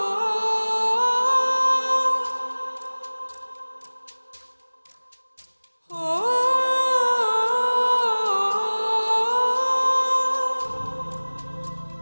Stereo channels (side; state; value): both; inverted; correlation -1.00